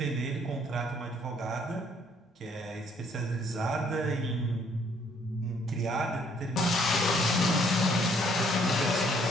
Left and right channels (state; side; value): normal; both; correlation 0.65